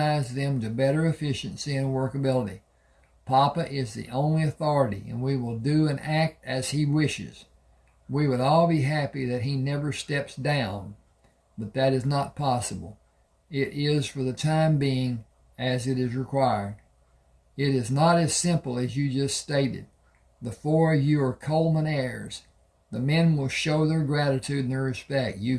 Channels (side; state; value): both; identical; correlation 1.00